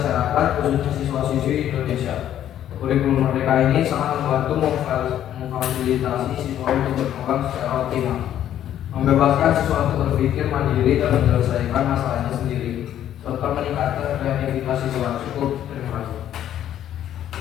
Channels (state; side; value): quieter; right; 11.1 dB